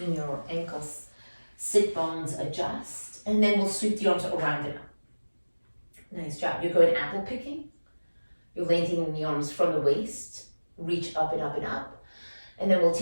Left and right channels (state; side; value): inverted; both; correlation -1.00